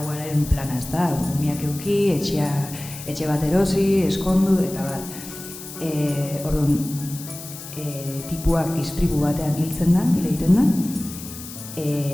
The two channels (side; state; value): left; noise; hiss, 13 dB below the sound